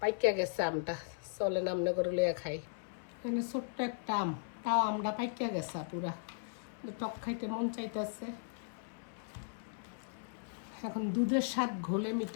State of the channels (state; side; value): silent; right; 53 dB below the other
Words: গেছে আমটা, চলে নামনে করে লইয়া খাই। এখানে ছোট্ট একটা আম, তাও আমরা পাইকা গেছে পুরা, টক খাইতে মন চাইতেছে। এখন দুধের স্বাদ ঘোলে